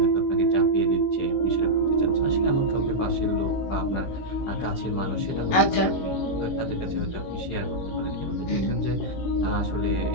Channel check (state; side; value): late; right; 16 ms